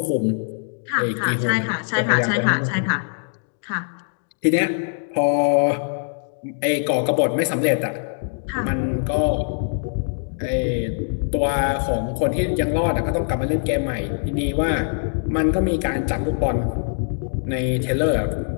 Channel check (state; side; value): silent; right; digital silence